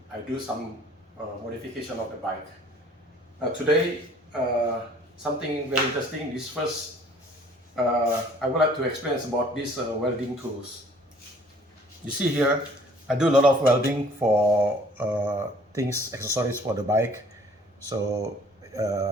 I do some modification of the bike. Today, something very interesting. This first, I would like to explain about these welding tools. You see here, I do a lot of welding for things, accessories for the bike. So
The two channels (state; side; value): normal; both; correlation 0.55